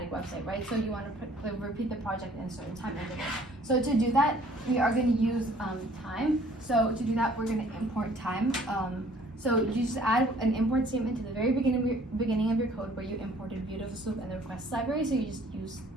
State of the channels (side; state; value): both; normal; correlation 0.56